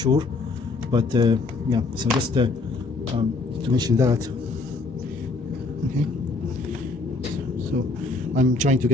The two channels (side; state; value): right; quieter; 3.6 dB